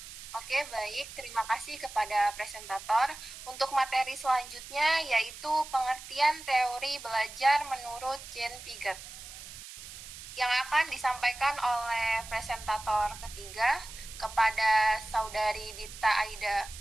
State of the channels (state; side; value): noise; right; hiss, 13 dB below the sound